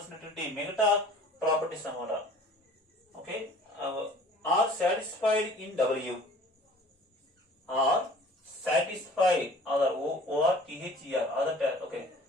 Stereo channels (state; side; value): normal; both; correlation 0.48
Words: మిగతా ప్రాపర్టీస్ అన్నమాట. Okay, are satisfied in W, are satisfied other ORTHER other. Okay,